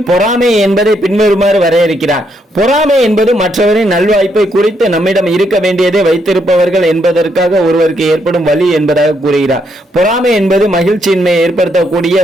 பொறாமை என்பதை பின்வருமாறு வரையறுக்கிறார். பொறாமை என்பது மற்றவரின் நல்வாய்ப்பை குறித்து நம்மிடம் இருக்க வேண்டியதை வைத்திருப்பவர்கள் என்பதற்காக ஒருவருக்கு ஏற்படும் வலி என்பதாக கூறுகிறார். பொறாமை என்பது மகிழ்ச்சியின்மையை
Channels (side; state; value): both; normal; correlation 0.76